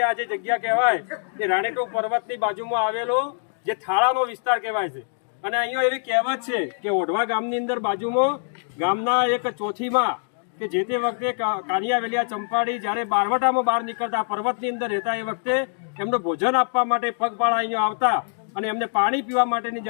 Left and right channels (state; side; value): silent; right; digital silence